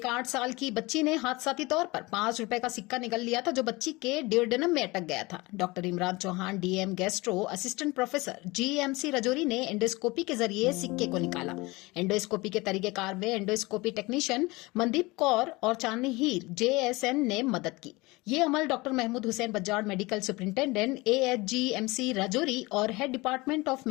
8 साल की बच्ची ने हादसाती तौर पर 5 रुपए का सिक्का निकल लिया था, जो बच्ची के डियोडेनम में अटक गया था। Doctor Imran Chauhan, DM gastro, assistant professor, GMC Rajouri ने एंडोस्कोपी के जरिए सिक्के को निकाला। एंडोस्कोपी के तरीकेकार में एंडोस्कोपी टेक्नीशियन मनदीप कौर और चांदनी हीर जेएसएन ने मदद की। ये अमल doctor Mahmood Hussain Bajad, medical superintendent AHGMC Rajouri और head department of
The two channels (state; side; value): quieter; right; 22.9 dB